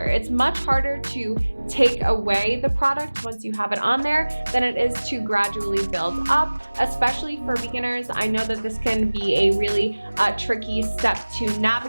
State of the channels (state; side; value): inverted; both; correlation -1.00